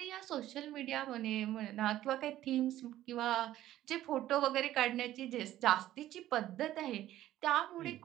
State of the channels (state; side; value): quieter; left; 13.7 dB